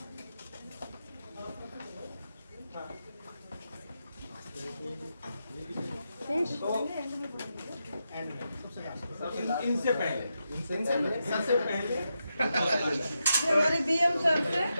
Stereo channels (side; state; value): both; inverted; correlation -0.86